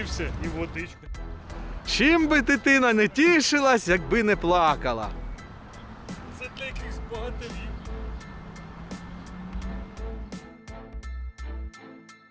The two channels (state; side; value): identical; both; correlation 1.00